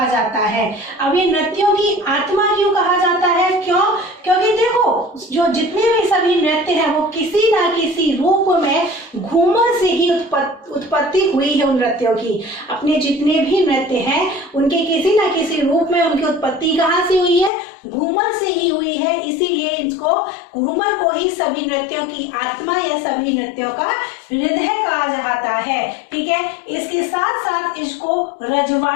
जाता है। अब ये नृत्यों की आत्मा क्यों कहा जाता है? क्यों? क्योंकि देखो, जो जितने भी सभी नृत्य हैं वो किसी ना किसी रूप में घूमर से ही उत्पत्ति हुई है। उन नृत्यों की, अपने जितने भी नृत्य हैं उनके किसी ना किसी रूप में उनकी उत्पत्ति कहाँ से हुई है? घूमर से ही हुई है। इसीलिए इसको घूमर को ही सभी नृत्यों की आत्मा या सभी नृत्यों का हृदय कहा जाता है। ठीक है, इसके साथ साथ इसको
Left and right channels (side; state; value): right; drops out; at 17.5 s